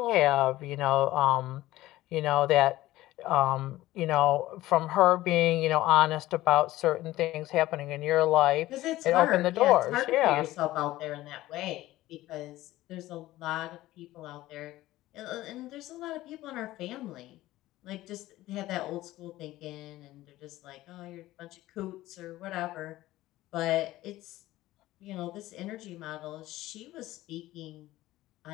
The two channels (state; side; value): quieter; right; 16.4 dB